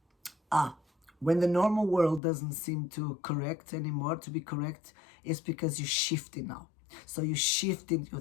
When the normal world doesn't seem to be correct, it's because you're shifting now. So you shift in your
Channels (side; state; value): right; drops out; at 2.2 s